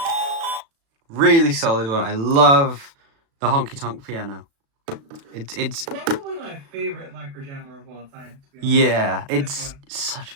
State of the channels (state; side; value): late; left; 36 ms